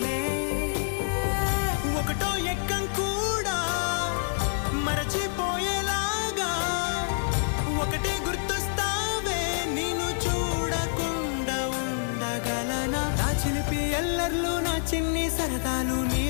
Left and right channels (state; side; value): silent; right; digital silence